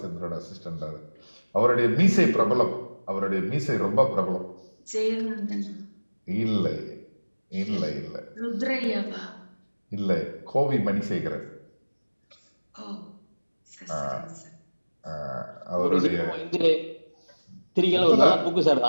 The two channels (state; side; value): inverted; both; correlation -1.00